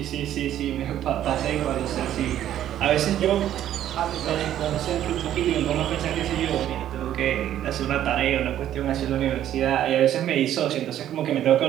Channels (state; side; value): quieter; left; 11.5 dB